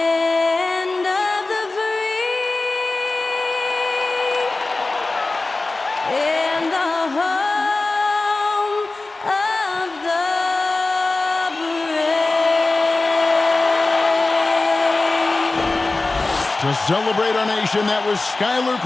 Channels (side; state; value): right; quieter; 3.3 dB